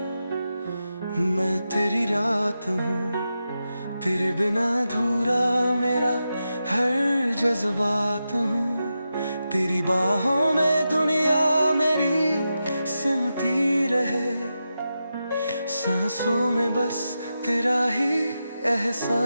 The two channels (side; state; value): both; inverted; correlation -0.89